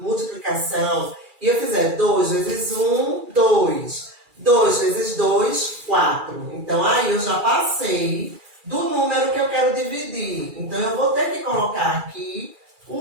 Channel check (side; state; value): left; late; 2.3 ms